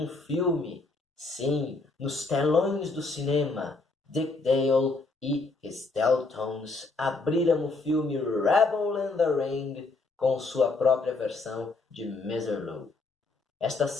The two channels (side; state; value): right; quieter; 3.6 dB